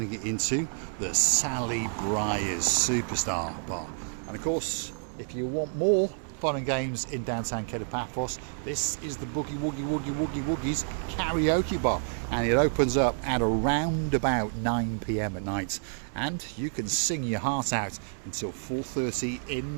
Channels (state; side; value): silent; left; 59 dB below the other